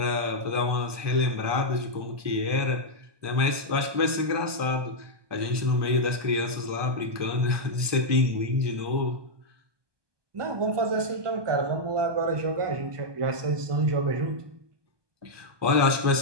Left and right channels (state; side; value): late; left; 1.2 ms